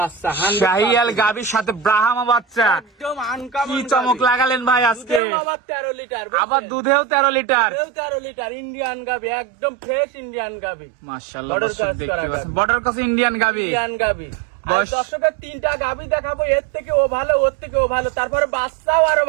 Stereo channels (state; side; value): drops out; left; at 5.2 s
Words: শাহিয়াল গাবির সাথে ব্রাহ্মা বাচ্চা, একদম আনকমন। কি চমক লাগালেন ভাই আজকে। আবার 13 লিটার, আবার দুধেও 13 লিটার, 13 লিটার ইন্ডিয়ান গাবি, একদম ফ্রেশ ইন্ডিয়ান গাবি। মাশাআল্লাহ, দর্শক দেখতে পাচ্ছেন বর্ডার ক্রস ইন্ডিয়ান গাবি। ইন্ডিয়ান গাবি। আর দর্শকের 3টা গাবি দেখাবো, এর থেকে ও ভালো, ওর থেকে ও ভালো, তারপরে বাচ্চাও আরো